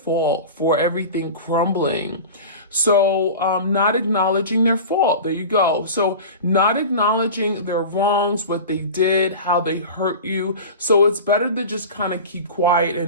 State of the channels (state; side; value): inverted; both; correlation -0.32